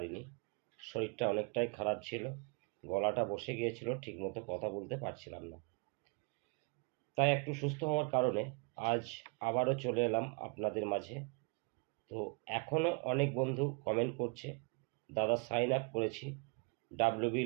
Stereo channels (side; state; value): left; quieter; 31.2 dB